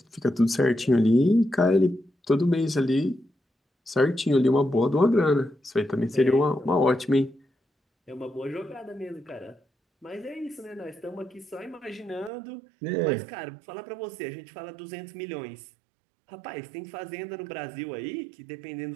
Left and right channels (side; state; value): left; drops out; at 12.3 s